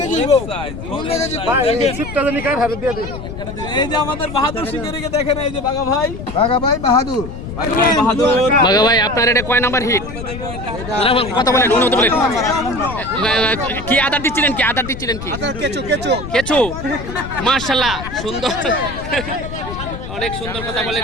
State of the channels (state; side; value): noise; left; rumble, 9 dB below the sound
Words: এই যে আমাদের বাহাদুর শিকারীকে দেখেন, এই যে বাঘা ভাই বাঘা ভাই বাহাদুর বাঘা ভাই আপনার এটা কয় নাম্বার হিট কথা বলেন অনুমতি বলেন কি আদার দিচ্ছিলেন কি কেঁচো মাশাআল্লাহ সুন্দর অনেক সুন্দর কথা